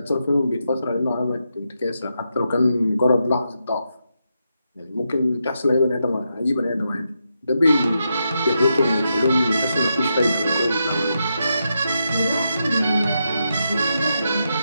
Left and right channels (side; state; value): both; inverted; correlation -0.84